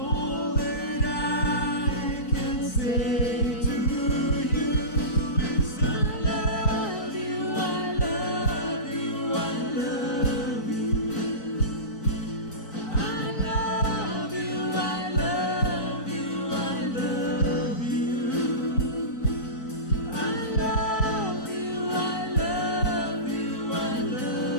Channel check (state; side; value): late; right; 4.6 ms